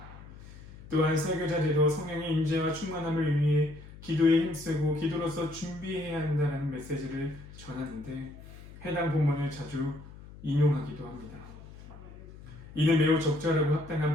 또한 설교자들도 성령의 임재와 충만함을 위해 기도에 힘쓰고 기도로서 준비해야 한다는 메시지를 전하는데 해당 본문을 자주 인용하기도 합니다. 이는 매우 적절하고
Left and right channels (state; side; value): noise; left; hum, 17 dB below the sound